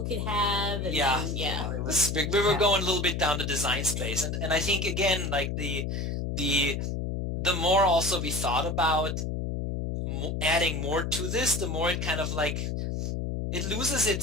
could have. And it was, we were going a little bit down the design space, and I think again, like the more also we thought about adding more to this, the more it kind of like it loses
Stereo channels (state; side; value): noise; left; hum, 2 dB below the sound